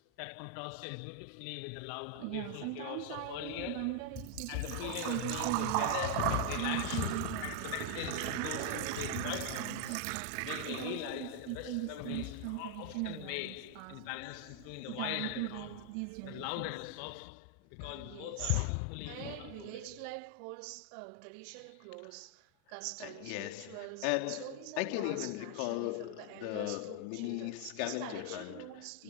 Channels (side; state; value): both; different; correlation 0.00